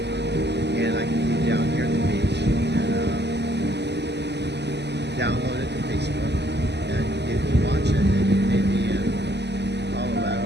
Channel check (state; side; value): late; left; 0.50 ms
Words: and I can be down here at the beach and download it to Facebook, and you can watch it. And you may be in